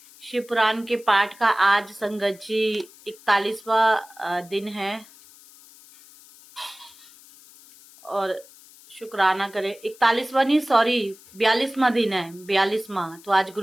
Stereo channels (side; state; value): left; noise; hiss, 23 dB below the sound